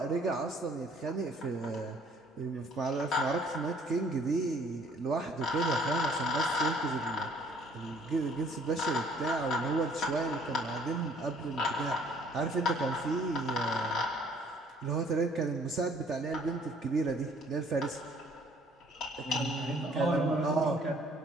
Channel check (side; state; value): both; normal; correlation 0.59